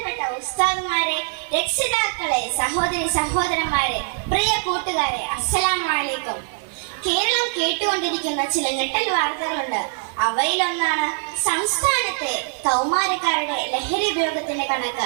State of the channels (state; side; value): silent; left; 64 dB below the other